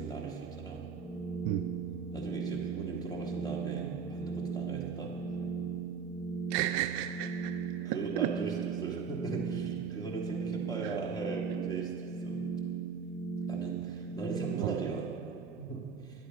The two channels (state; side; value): quieter; left; 6.1 dB